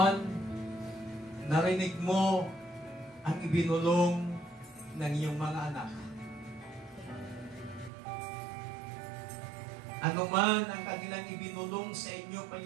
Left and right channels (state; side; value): drops out; left; at 7.9 s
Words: narinig mo ang ibinulong ng iyong mga anak. Ano man ang kanilang ibinulong sa inyo,